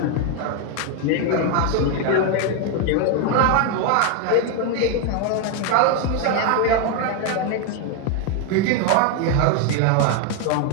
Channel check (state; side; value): different; both; correlation 0.01